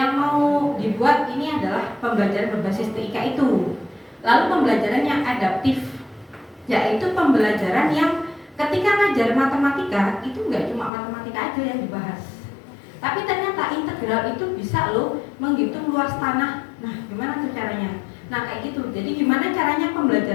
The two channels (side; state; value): right; drops out; at 10.9 s